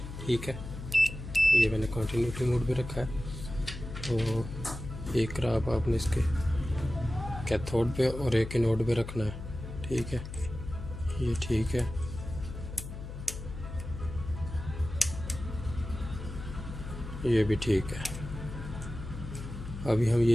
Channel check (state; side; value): noise; left; hum, 9 dB below the sound